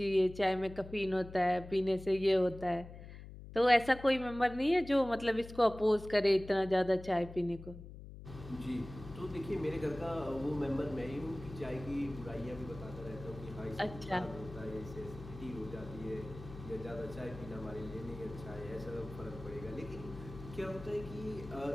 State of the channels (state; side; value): noise; left; hum, 14 dB below the sound